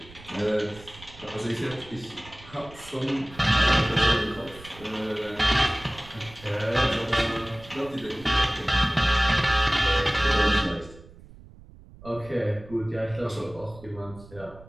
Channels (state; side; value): noise; right; rumble, 20 dB below the sound